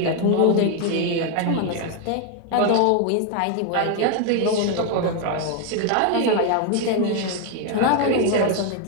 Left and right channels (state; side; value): different; both; correlation 0.01